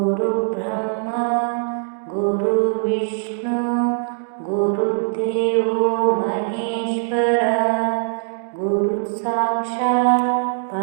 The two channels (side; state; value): left; silent; 65 dB below the other